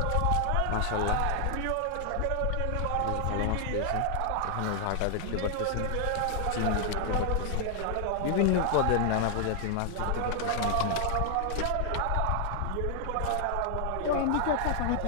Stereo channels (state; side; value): different; both; correlation 0.00